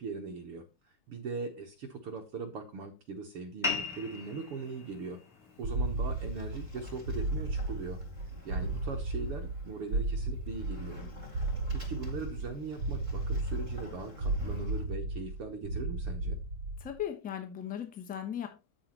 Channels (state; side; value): late; left; 3.7 ms